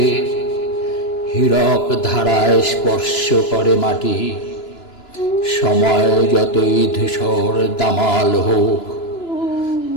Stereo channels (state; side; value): late; right; 2.9 ms